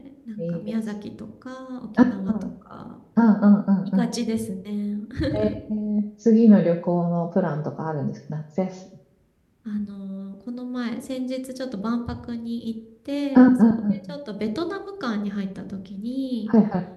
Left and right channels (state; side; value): identical; both; correlation 1.00